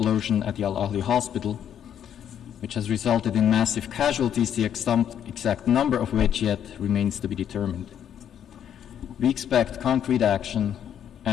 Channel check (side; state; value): right; quieter; 9.4 dB